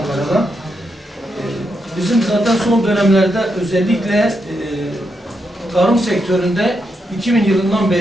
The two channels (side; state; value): both; normal; correlation 0.82